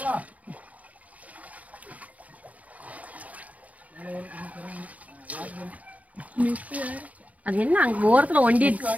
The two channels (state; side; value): late; left; 0.071 ms